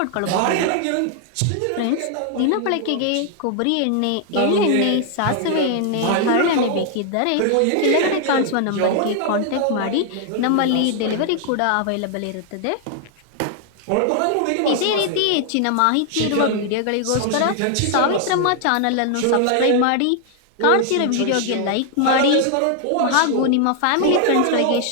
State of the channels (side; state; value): both; different; correlation 0.00